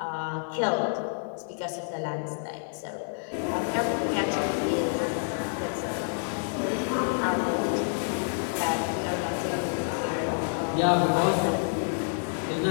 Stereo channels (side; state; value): right; silent; digital silence